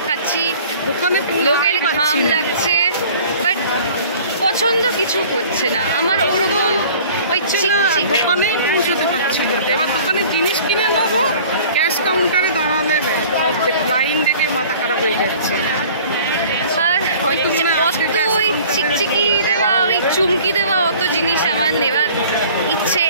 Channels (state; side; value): inverted; both; correlation -0.48